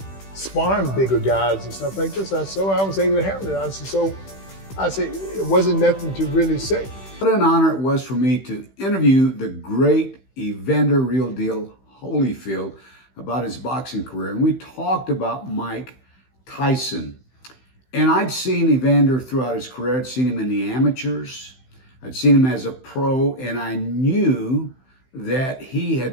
sparring bigger guys and stuff like this. So I was able to handle it. I said, it wasn't nothing to really say. What an honor it was for me to interview the great Evander Real Deal Holyfield about his boxing career. And we talked about Mike Tyson. And I'd seen Evander throughout his career. I'd seen him in the amateurs. I'd seen him as a pro, and I knew that he had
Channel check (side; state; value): right; late; 15 ms